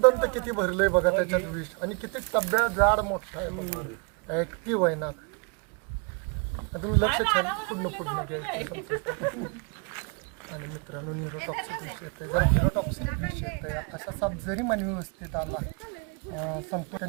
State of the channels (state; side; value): quieter; left; 34.3 dB